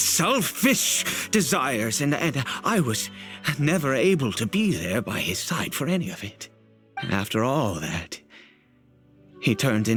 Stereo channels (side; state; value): both; identical; correlation 1.00